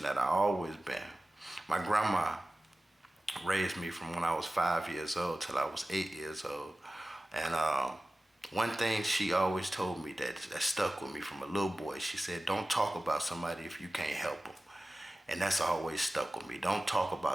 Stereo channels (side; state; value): both; normal; correlation 0.96